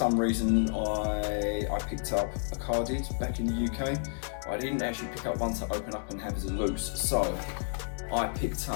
reason I picked up a carded back in the UK. I didn't actually pick up one to open up and have as a loose, so I picked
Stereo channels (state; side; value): silent; right; digital silence